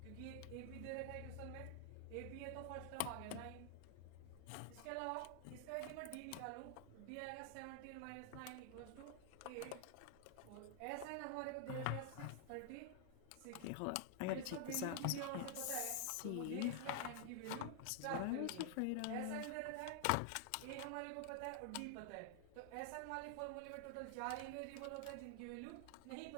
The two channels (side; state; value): both; different; correlation 0.00